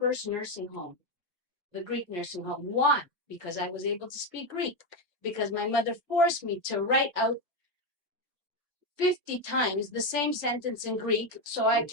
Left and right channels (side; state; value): both; normal; correlation 0.09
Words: nursing home, the Greek nursing home. Why? Because I was able to speak Greek. Because my mother forced me to write out 50 times the same sentence in Greek so I